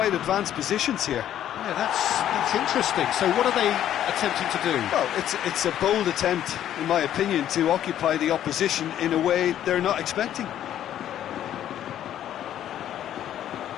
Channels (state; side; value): quieter; right; 11.2 dB